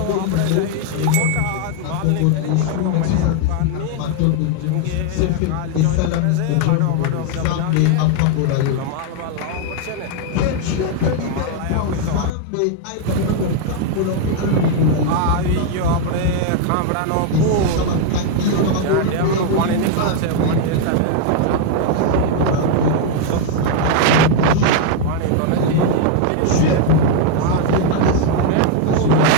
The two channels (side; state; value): both; different; correlation 0.00